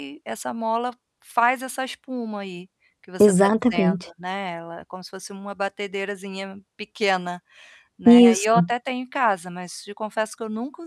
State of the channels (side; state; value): both; identical; correlation 1.00